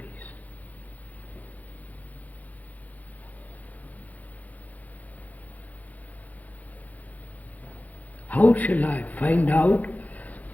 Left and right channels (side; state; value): right; late; 0.078 ms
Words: How shall I find out